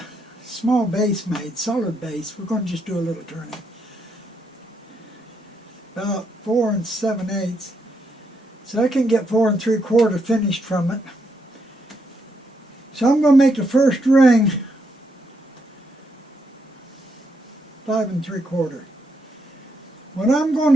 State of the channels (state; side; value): normal; both; correlation 0.78